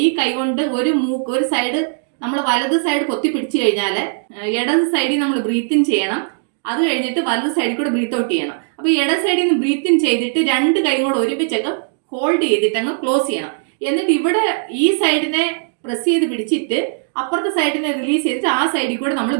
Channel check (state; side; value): silent; left; digital silence